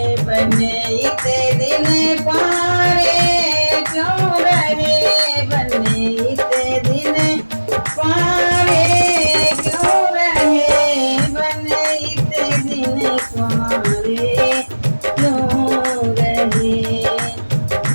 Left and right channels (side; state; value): both; inverted; correlation -1.00